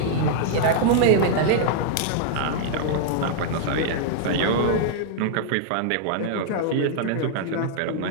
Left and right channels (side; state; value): both; different; correlation -0.01